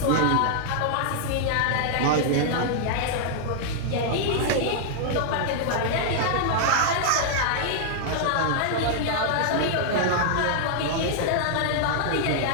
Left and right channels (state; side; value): different; both; correlation -0.01